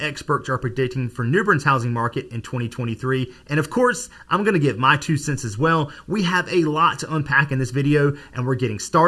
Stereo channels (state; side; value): identical; both; correlation 1.00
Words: are predicting for New Bern's housing market in 2023, and of course, I'm going to give my 2 cents as well. We have a lot to unpack in this video, and we're getting